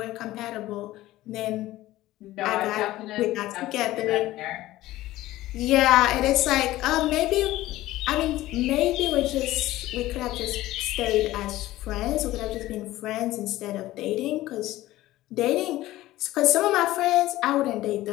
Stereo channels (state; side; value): quieter; right; 16.3 dB